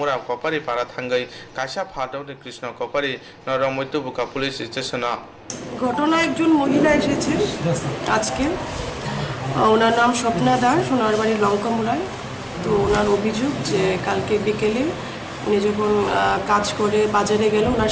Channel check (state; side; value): identical; both; correlation 1.00